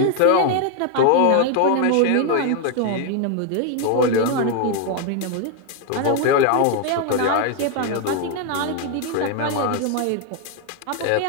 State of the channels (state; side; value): different; both; correlation 0.00